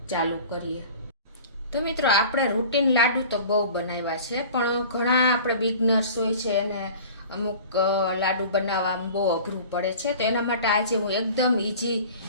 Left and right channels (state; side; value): inverted; both; correlation -0.42